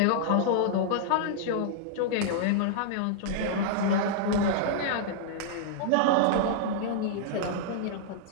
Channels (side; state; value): both; different; correlation -0.01